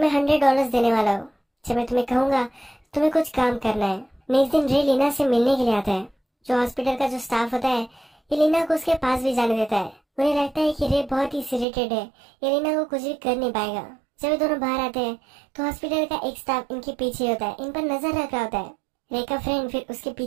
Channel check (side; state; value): left; drops out; at 11.7 s